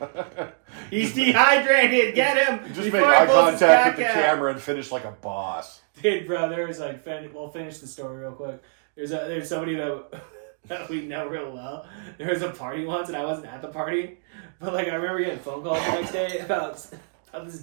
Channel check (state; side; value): silent; left; digital silence